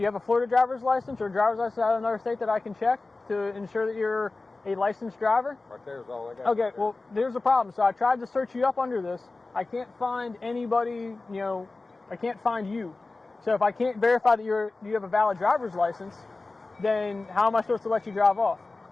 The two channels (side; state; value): right; quieter; 3.4 dB